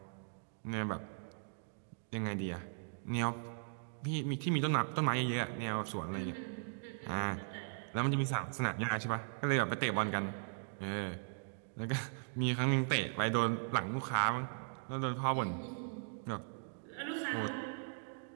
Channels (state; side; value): silent; left; digital silence